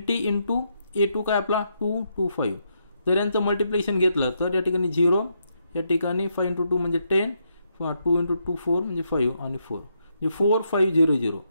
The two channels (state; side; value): inverted; both; correlation -0.79